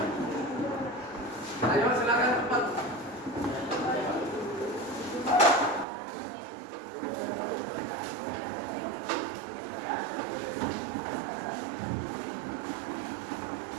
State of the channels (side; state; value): left; drops out; at 5.9 s